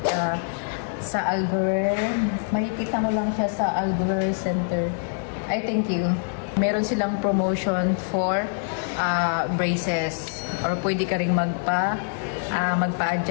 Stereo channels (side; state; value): right; silent; digital silence